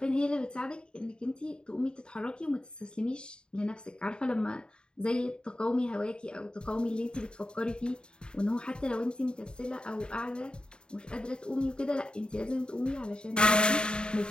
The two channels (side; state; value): right; late; 0.050 ms